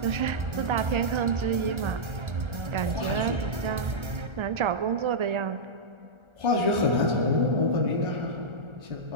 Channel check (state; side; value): late; left; 1.3 ms